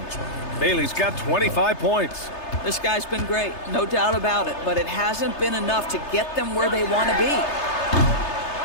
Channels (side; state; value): right; late; 3.3 ms